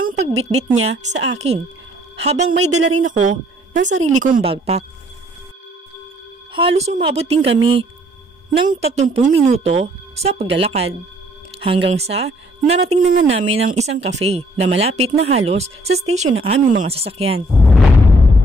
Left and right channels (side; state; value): both; normal; correlation 0.63